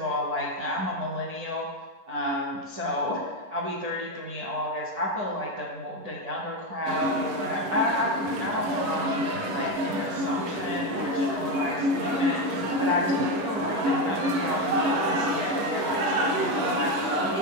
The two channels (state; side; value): late; left; 11 ms